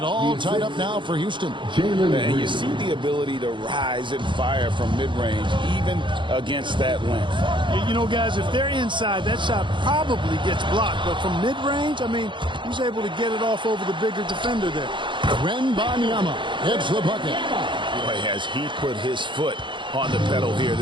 all tied up now for Houston. And you see the ability to rise and fire from mid-range, even against that length. You know, guys, if they're inside, that shot probably gets blocked. But from mid-range, I mean, he's able to get it off over the bigger defender there. Wembanyama hits the bucket. Boy, has he put his foot on the pedal here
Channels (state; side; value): late; left; 0.23 ms